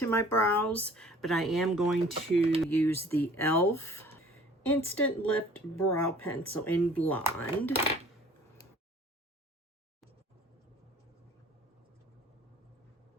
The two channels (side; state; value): both; normal; correlation 0.51